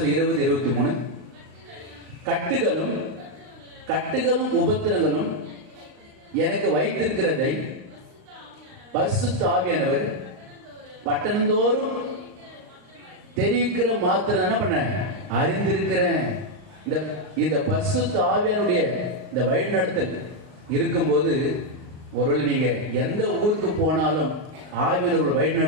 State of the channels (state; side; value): late; left; 38 ms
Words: 20:23 கட்டுகளும் உபத்திரங்களும் எனக்கு வைத்திருக்கிறதை பரிசுத்த ஆவியானவர் பட்டணந்தோறும் தெரிவிக்கிற மாத்திரம் என்ன பண்ண அறிந்திருக்கிறேன். இந்த பரிசுத்த ஆவியானுடைய இந்த வழிநடத்தல் இருக்கும்போது ஒருவேளை நீங்க எந்த ஊருக்கு போனாலும் ஆவியானவர் வழி